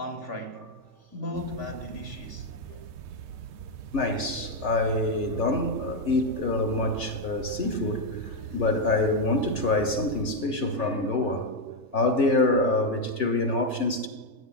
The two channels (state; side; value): late; left; 3.4 ms